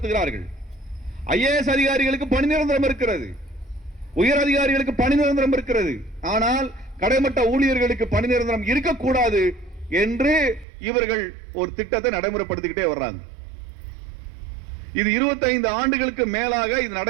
IAS அதிகாரிகளுக்கு பணி நிரந்தரம் இருக்கிறது, உயர் அதிகாரிகளுக்கு பணி நிரந்தரம் இருக்கிறது. ஆனால் கடைமட்ட ஊழியர்களுக்கு பணி நிரந்தரம் இருக்கக்கூடாது என்று இவர்கள் ஒரு திட்டத்தை நடைமுறைப்படுத்திக்கிட்டே வர்றாங்க. இது 25 ஆண்டுகளுக்கு மேலாக இது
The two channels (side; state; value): left; drops out; at 10.7 s